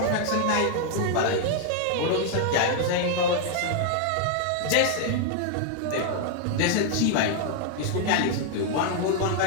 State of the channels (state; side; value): different; both; correlation 0.00